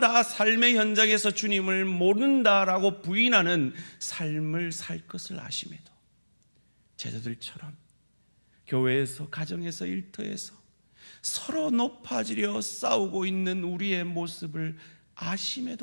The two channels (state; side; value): inverted; both; correlation -1.00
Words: 삶의 현장에서 주님을 모른다라고 부인하는 삶을 살 것을 아심에도 제자들처럼 교회에서, 가정에서, 일터에서 서로 높아지려 싸우고 있는 우리의 모습을